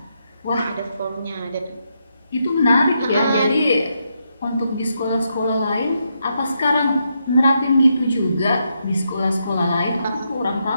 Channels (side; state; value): both; inverted; correlation -0.81